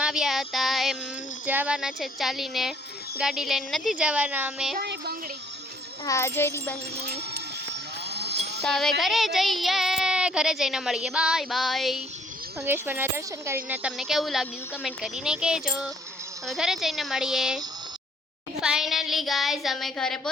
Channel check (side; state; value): both; normal; correlation 0.63